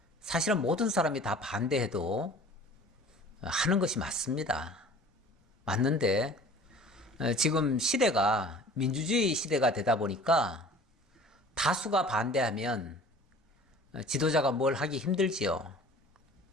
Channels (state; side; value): normal; both; correlation 0.46